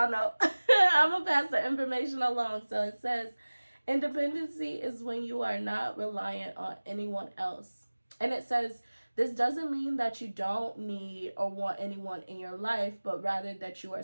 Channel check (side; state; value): both; inverted; correlation -1.00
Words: know. I'm going to pass the information along. So it says, independency is when you are not reliant on anyone else. And it says, this doesn't mean that you don't need or want anyone in your life, but rather that you are